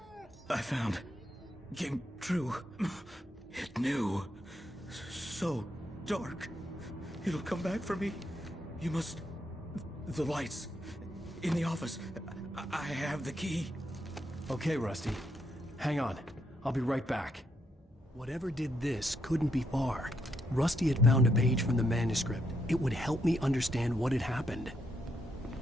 I found. Came true. It knew. So dark. It'll come back for me. You must... The lights. In the office. I have the key. Okay, Rusty. Hang on. I'll be right back. Whatever did this couldn't be far. Rusty had found a page from the manuscript. It would help me understand what had happened.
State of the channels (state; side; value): normal; both; correlation 0.78